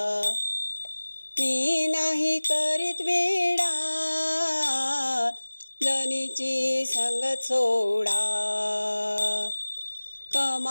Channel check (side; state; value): both; inverted; correlation -1.00